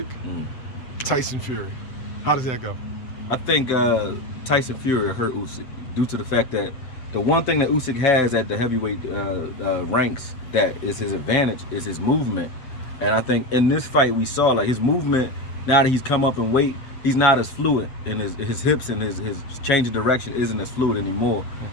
Tyson Fury. How does that go? I think Tyson Fury hurt Usyk due to the fact that the one thing that Usyk has at the heavyweight ranks that is his advantage is his movement. And I think in this fight we saw like his movement, now that he's come up in weight, he's not as fluid, and his hips and his change of direction isn't as fluid anymore.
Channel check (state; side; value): late; right; 7.8 ms